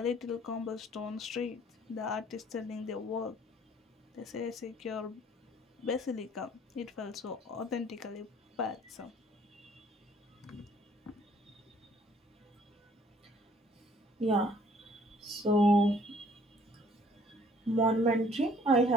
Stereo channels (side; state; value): both; normal; correlation 0.59